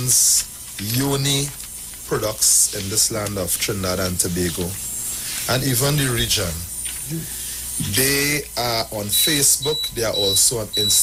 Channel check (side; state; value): both; identical; correlation 1.00